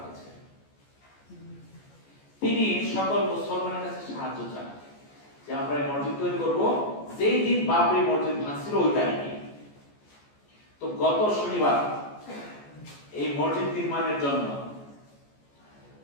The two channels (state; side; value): late; right; 14 ms